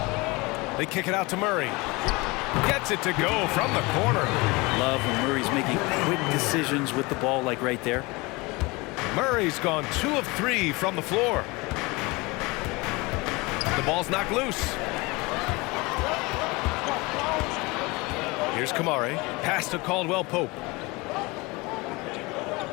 They kick it out to Murray. Gets it to go from the corner. Love when Murray's making quick decisions with the ball, like right there. Murray's gone 2 of 3 from the floor. The ball's knocked loose. Here's Kamari. Pass to Caldwell Pope.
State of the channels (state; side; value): quieter; right; 24.6 dB